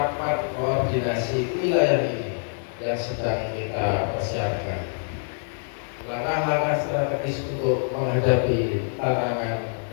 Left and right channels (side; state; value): right; silent; 62 dB below the other